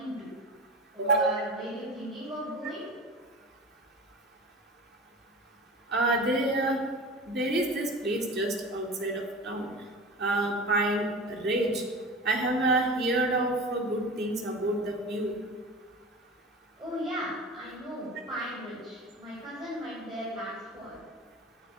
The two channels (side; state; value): both; normal; correlation 0.33